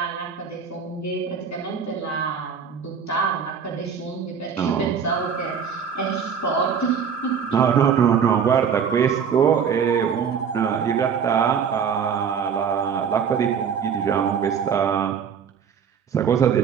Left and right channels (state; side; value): quieter; left; 7.0 dB